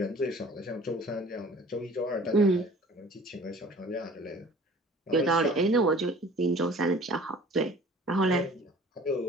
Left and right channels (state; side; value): normal; both; correlation 0.48